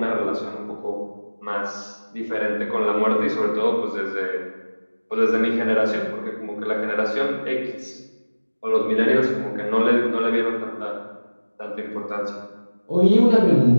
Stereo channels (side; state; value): both; inverted; correlation -1.00